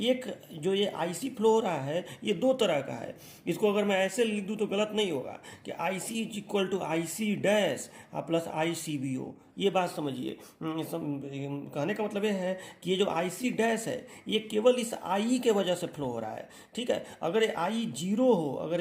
एक जो ये IC फ्लो हो रहा है ये दो तरह का है। इसको अगर मैं ऐसे लिख दूँ तो गलत नहीं होगा कि IC is equal to IC dash plus ICBO। ये बात समझिए, कहने का मतलब ये है कि ये जो IC डैश है ये केवल इस आई के वजह से फ्लो हो रहा है, ठीक है। अगर ये आई जीरो हो, अगर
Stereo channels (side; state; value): both; identical; correlation 1.00